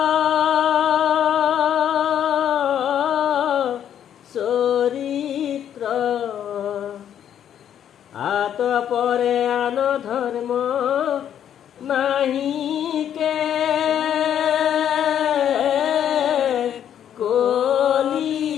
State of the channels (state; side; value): quieter; right; 9.8 dB